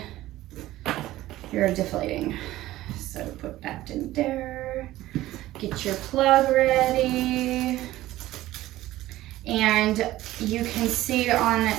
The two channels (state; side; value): quieter; left; 15.8 dB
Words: you're deflating. So put that in there. Get your plug ready. And you can see on